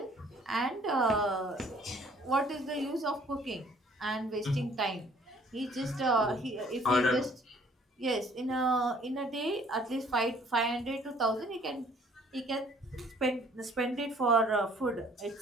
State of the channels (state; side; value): normal; both; correlation 0.58